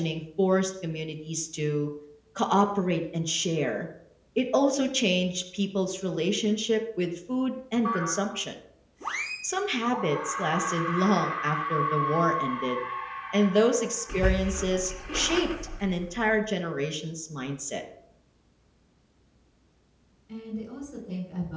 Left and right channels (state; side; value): identical; both; correlation 1.00